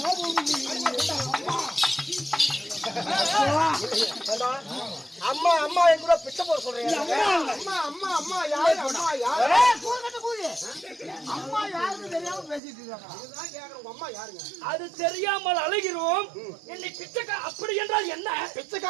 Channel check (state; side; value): drops out; left; at 12.6 s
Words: அம்மா அம்மா எங்கூட பிச்சை போட சொல்றீங்க. அம்மா அம்மா அம்மா யாரு? அம்மா யாரு? அம்மா யாருன்னு தெரியாம பேசிட்டு இருக்காங்க. இதுதான் கேக்குறேன். உங்க அம்மா யாருங்க? அது தெரியாமல் அழைகிறோம். என்னை பிச்சைக்கார அப்படி என்றால் என்ன?